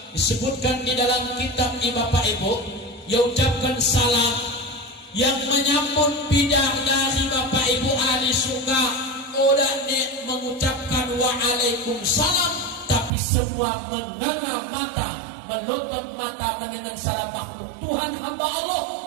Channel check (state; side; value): drops out; left; at 13.1 s